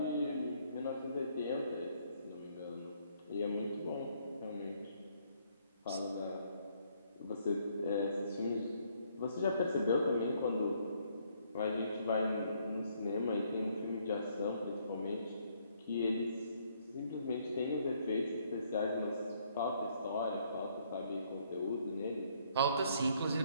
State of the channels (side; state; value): both; inverted; correlation -0.68